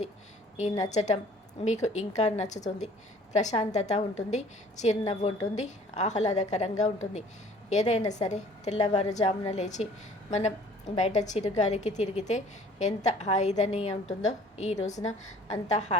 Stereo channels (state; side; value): normal; both; correlation 0.52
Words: ఈ నచ్చటం మీకు ఇంకా నచ్చుతుంది. ప్రశాంతత ఉంటుంది, చిరునవ్వు ఉంటుంది, ఆహ్లాదకరంగా ఉంటుంది. ఏదైనా సరే తెల్లవారుజామున లేచి మనం బయట చిరుగాలికి తిరిగితే ఎంత హాయిదని ఉంటుందో ఈ రోజున అంత